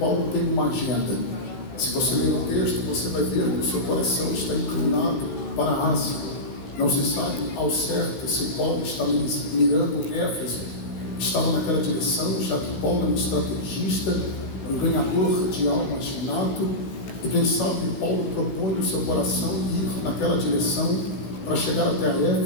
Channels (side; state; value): right; late; 16 ms